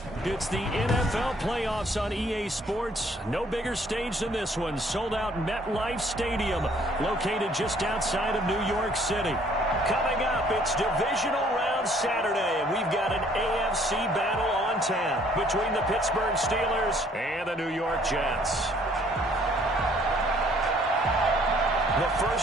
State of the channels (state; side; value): normal; both; correlation 0.61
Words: the NFL playoffs on EA Sports. No bigger stage than this one. Sold out MetLife Stadium, located just outside of New York City. Coming up, it's divisional round Saturday, and we've got an AFC battle on tap between the Pittsburgh Steelers and the New York Jets. The